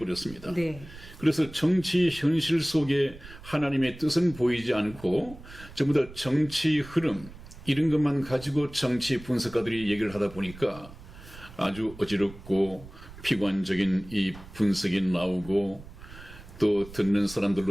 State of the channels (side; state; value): right; noise; rumble, 17 dB below the sound